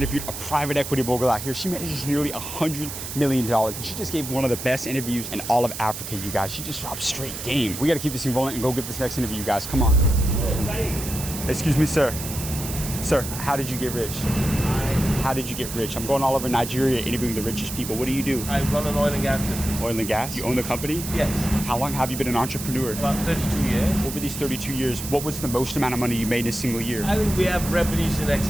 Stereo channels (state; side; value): noise; right; hiss, 8 dB below the sound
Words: a private equity mogul out here. She manages nearly $100 million. And she just gave one of the best interviews in all of Africa, you guys. She just dropped straight game. We got to keep this thing rolling and go get this next interview, you guys. Come on. Excuse me, sir. Sir, how did you get rich? How did you get rich? I'm going all over Nigeria interviewing the richest people. What do you do? I run an oil and gas business. Oil and gas? You own the company? Yes. How long have you been an entrepreneur? About 32 years. Over these 32 years, what was the most amount of money you made in a single year? I think we have revenues in